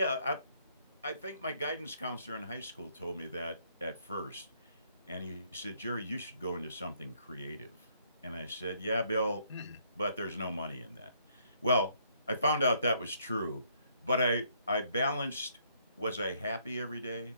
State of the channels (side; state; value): both; inverted; correlation -0.68